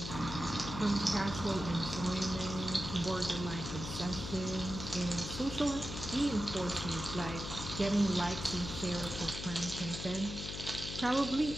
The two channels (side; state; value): left; noise; hum, 7 dB below the sound